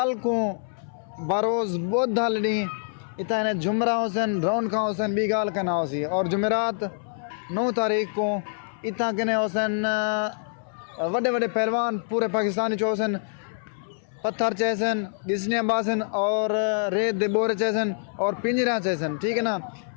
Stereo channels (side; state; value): right; silent; 61 dB below the other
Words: को बरोज़ बुध हलनी इतना जुमरा हुसैन रौनक हुसैन बी गाल कहना होसी और जुमेरात 9 तारीख को इतना कहने हुसैन वड्डे वड्डे पहलवान पूरे पाकिस्तानी चो हुसैन पत्थर चैसन गिसनिया बासन और रेत दे बोरे चैसन और पिंजरा चैसन ठीक है ना।